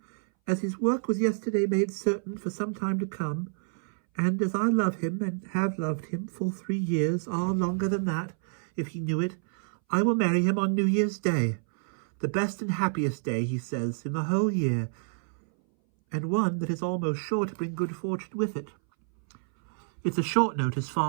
as his work was yesterday made certain for some time to come, and as I love him and have loved him full 3 years, longer than that, if he knew it, I will marry him on New Year's Day, the best and happiest day, he says, in the whole year, and one that is almost sure to bring good fortune with it. It's a short notice,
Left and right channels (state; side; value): silent; left; 59 dB below the other